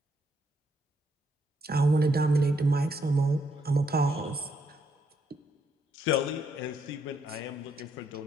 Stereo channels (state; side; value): normal; both; correlation 0.75